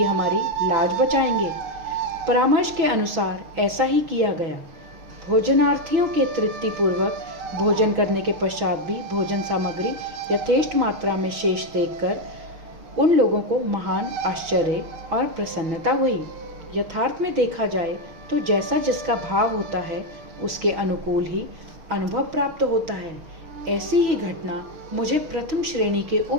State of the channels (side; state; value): left; late; 6.4 ms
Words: हमारी लाज बचाएंगे। परामर्श के अनुसार ऐसा ही किया गया। भोजनार्थियों के तृप्तिपूर्वक भोजन करने के पश्चात भी भोजन सामग्री यथेष्ट मात्रा में शेष देखकर उन लोगों को महान आश्चर्य और प्रसन्नता हुई। यथार्थ में देखा जाए तो जैसा जिसका भाव होता है उसके अनुकूल ही अनुभव प्राप्त होता है। ऐसी ही घटना मुझे प्रथम श्रेणी के